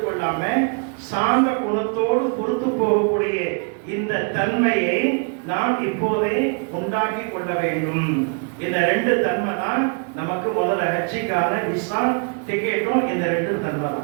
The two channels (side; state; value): left; quieter; 39.9 dB